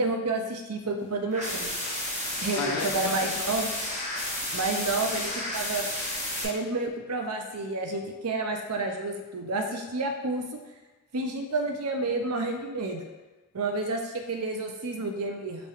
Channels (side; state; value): both; normal; correlation -0.08